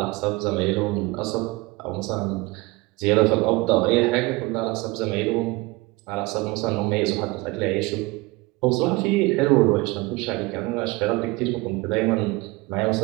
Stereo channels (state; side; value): quieter; left; 22.7 dB